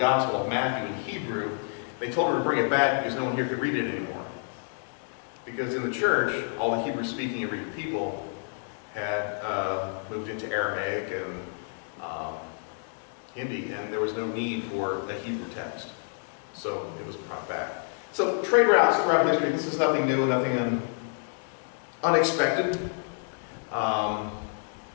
of Matthew in Hebrew. They told him to bring it back because no one here could read it anymore. Because in the church, all the Hebrew-speaking and reading people had moved into Aramaic and Hindi, and there was no need for a Hebrew text. So it was brought back. So trade routes throughout history, this is nothing new, nothing unexpected. So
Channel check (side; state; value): right; silent; 59 dB below the other